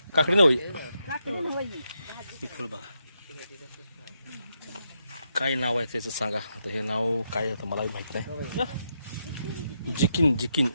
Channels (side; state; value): both; inverted; correlation -0.82